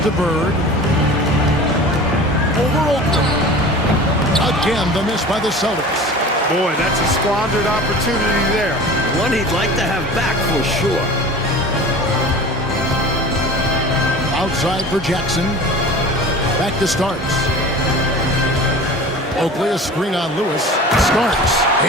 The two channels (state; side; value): normal; both; correlation 0.38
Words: to Bird. Over Oakland. Again, the miss by the Celtics. Boy, that's a squandered opportunity there. One he'd like to have back for sure. Outside for Jackson. Back to Starks. Oakley, a screen on Lewis. Starks.